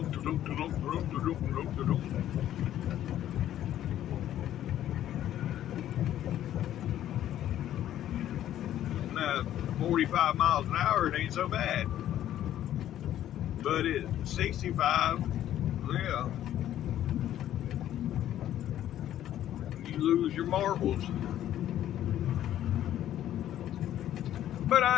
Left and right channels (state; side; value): quieter; right; 11.9 dB